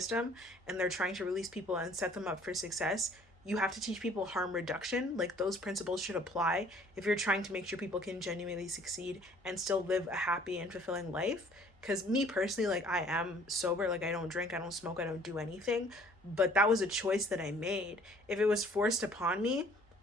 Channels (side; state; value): both; normal; correlation 0.56